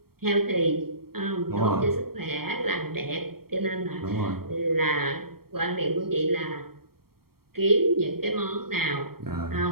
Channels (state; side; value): late; left; 0.94 ms